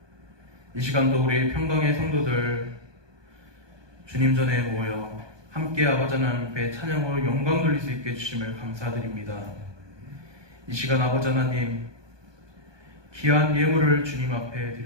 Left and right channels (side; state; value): left; late; 1.2 ms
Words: 이 시간도 우리 평강의 성도들 주님 전에 모여 함께 아버지 하나님 앞에 찬양으로 영광 돌릴 수 있게 해주심을 감사드립니다. 이 시간 아버지 하나님 귀한 예물을 주님 앞에